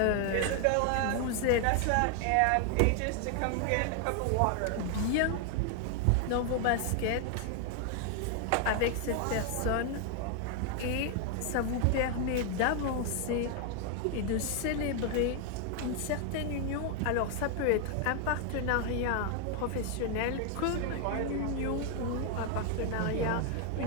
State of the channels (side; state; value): both; different; correlation 0.00